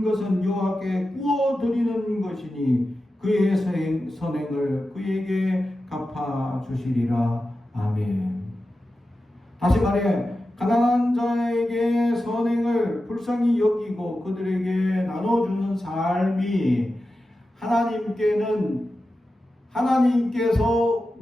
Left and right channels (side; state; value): both; normal; correlation 0.92